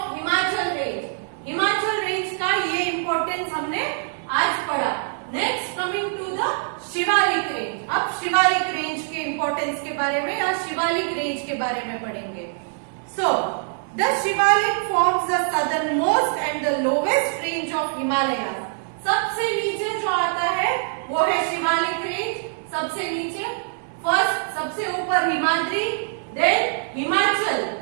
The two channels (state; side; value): silent; left; digital silence